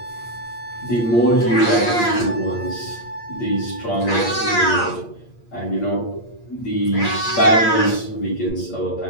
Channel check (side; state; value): right; late; 8.6 ms